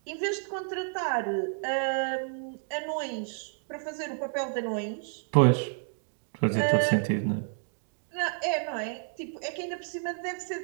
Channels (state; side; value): silent; left; 58 dB below the other